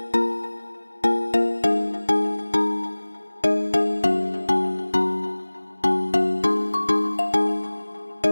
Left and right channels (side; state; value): both; inverted; correlation -1.00